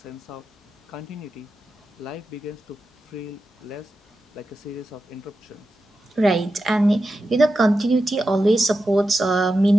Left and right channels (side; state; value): both; normal; correlation 0.90